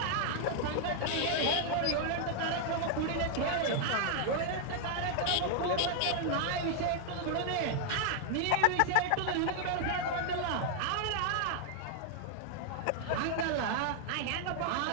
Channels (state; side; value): different; both; correlation 0.00